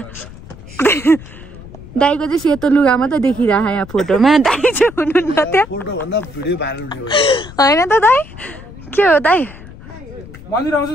दाइको चाहिँ सेतो लुगा मात्रै देखिरहेको यहाँ फोटोमा दाइ चाहिँ हुनुहुन्न त्यहाँ होइन त दाइ के हो दाइ मन्दिर आउँछ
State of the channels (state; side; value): noise; left; rumble, 17 dB below the sound